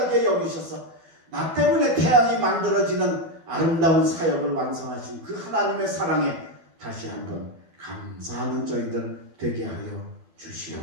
여기셔서 나 때문에 태양이 만들어지는 아름다운 사역을 완성하신 그 하나님의 사랑에 다시 한번 감사하는 저희들 되게 하여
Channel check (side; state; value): left; late; 12 ms